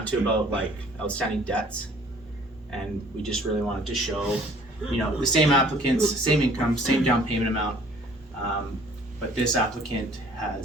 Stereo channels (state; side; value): normal; both; correlation 0.55